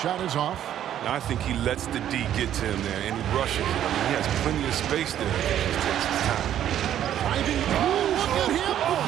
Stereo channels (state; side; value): quieter; left; 10.9 dB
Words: is off. I think he lets the D get to him there, and he rushes. I mean, he has plenty of space there. He just takes his time. Driving. Look at him